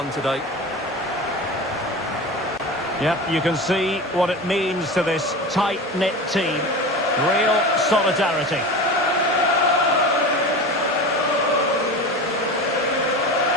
today. Yep, you can see what it means to this tight-knit team. Real solidarity.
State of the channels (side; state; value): both; normal; correlation 0.30